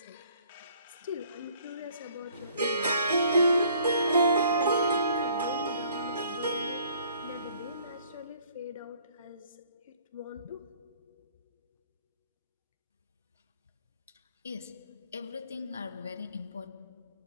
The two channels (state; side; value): inverted; both; correlation -0.60